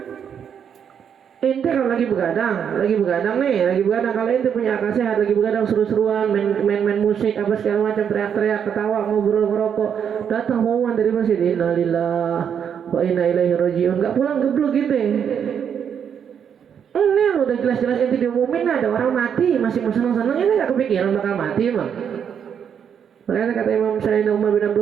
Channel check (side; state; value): left; quieter; 8.0 dB